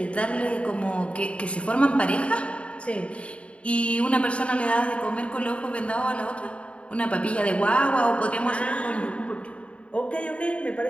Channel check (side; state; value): right; late; 0.061 ms